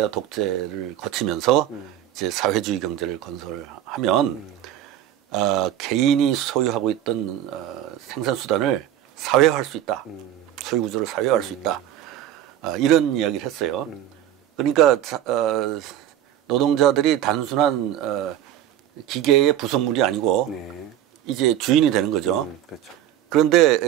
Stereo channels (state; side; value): quieter; left; 11.4 dB